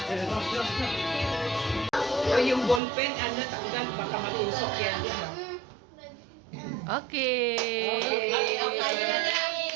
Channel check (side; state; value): left; drops out; at 2.8 s